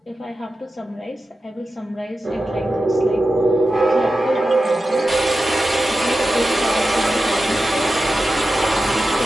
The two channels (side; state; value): both; normal; correlation 0.92